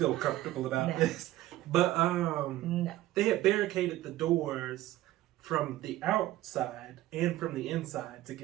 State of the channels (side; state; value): left; quieter; 15.4 dB